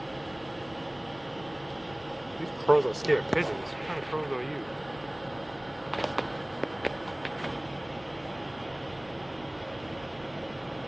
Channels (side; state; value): right; noise; rumble, 23 dB below the sound